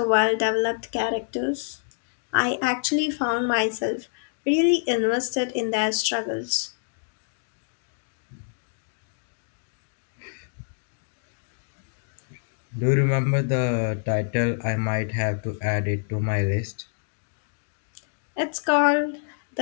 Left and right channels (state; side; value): silent; right; digital silence